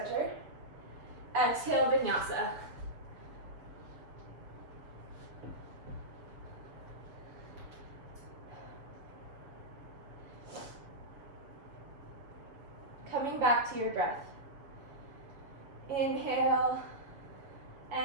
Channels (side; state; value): left; late; 7.1 ms